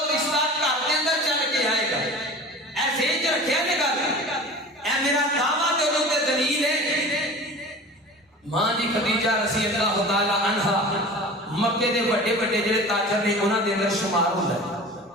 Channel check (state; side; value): normal; both; correlation 0.37